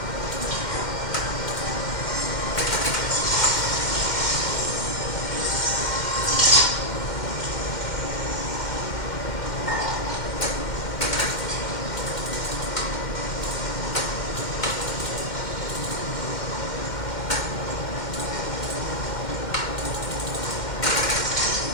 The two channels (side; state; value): right; late; 2.1 ms